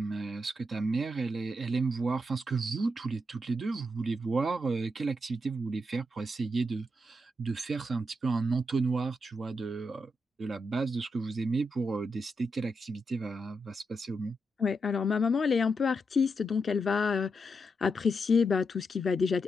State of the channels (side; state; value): both; normal; correlation 0.83